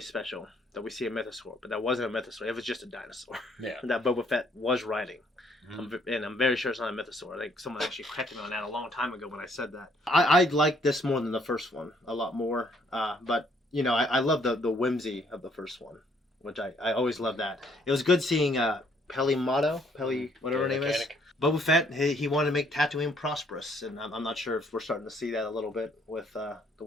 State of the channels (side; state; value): both; normal; correlation 0.66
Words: special that we see a mythosaur, but that wasn't a mythosaur. It was just a dinosaur. Yeah. That Boba Fett was riding. Mm-hmm. And I'm very sure it's not a mythosaur. I think someone actually corrected me on that a long time ago when I said that. I like this more than the first one, a lot more. But, you know, I love the whimsy of the first one, which I always love that. It was good seeing Peli, whatever her name is. Boba Fett, he wanted to make Tatooine prosperous, and I'm not sure if we're starting to see that a little bit with the